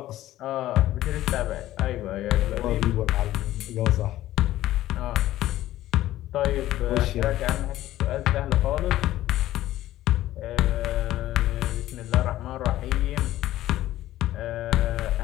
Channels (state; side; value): quieter; right; 14.6 dB